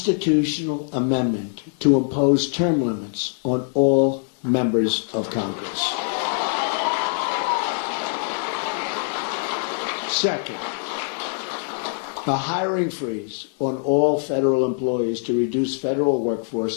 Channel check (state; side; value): silent; right; digital silence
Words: amendment to impose term limits on all members of Congress. Second, a hiring freeze on all federal employees to reduce federal